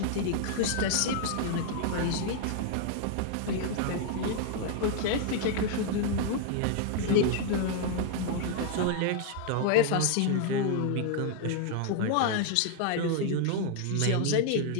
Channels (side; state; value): both; different; correlation 0.00